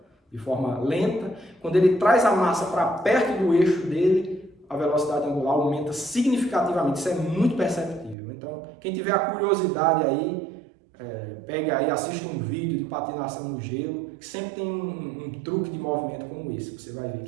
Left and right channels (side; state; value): left; drops out; at 8.2 s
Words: de forma lenta. Quando ele traz a massa para perto do eixo dele, a velocidade angular aumenta significativamente, isso é muito perceptível. Então quem tiver a curiosidade aí, pegue aí, assista um vídeo de patinação no gelo, que sempre tem um truque de movimento como esse. Você vai ver